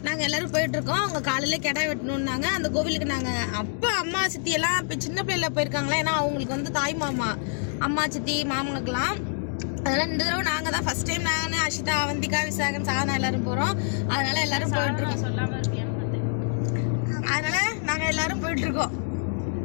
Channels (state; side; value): silent; right; 61 dB below the other